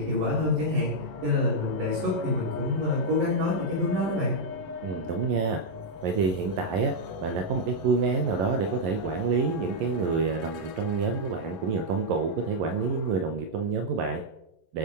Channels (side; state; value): left; late; 11 ms